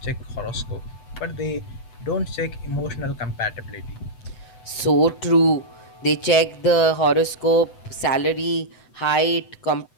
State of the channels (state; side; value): late; right; 7.9 ms